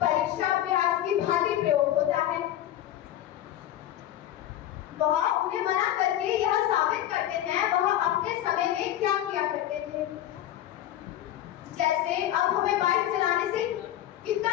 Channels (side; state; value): right; quieter; 12.5 dB